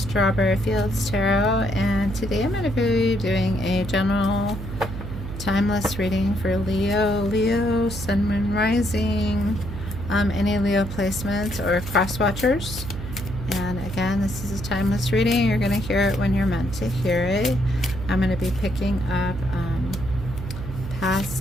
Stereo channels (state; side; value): noise; right; hum, 8 dB below the sound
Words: Fields Tarot, and today I'm going to be doing a general timeless reading for Leo, Sun, Moon, Rising, any Leo placements or cross watchers. And again, this is a timeless reading. You're going to hear it when you're meant to hear it. I'm going to be picking up